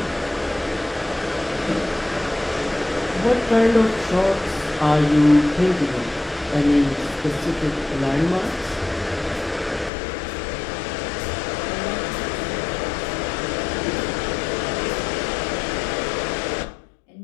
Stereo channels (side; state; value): right; drops out; at 9.9 s